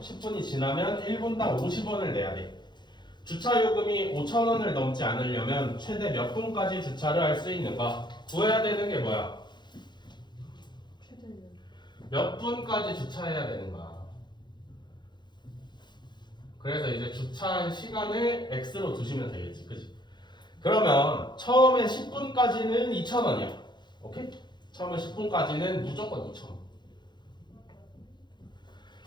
10분이 지나면 1분당 50원을 내야 돼. 주차요금이 5,000원을 넘지 않으려면 최대 몇 분까지 주차를 할 수 있는가? 구해야 되는 게 뭐야? 몇 분까지 주차해야 되는가? 그래서 이제 주차한 시간을 X로 두시면 되겠지, 그치? 그러면 처음에 10분까지는 2,000원이야. 오케이? 처음에 10분까지는 무조건 2,000원.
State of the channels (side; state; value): right; late; 0.21 ms